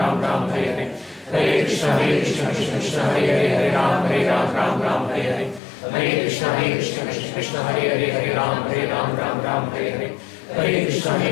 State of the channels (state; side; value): drops out; right; at 5.6 s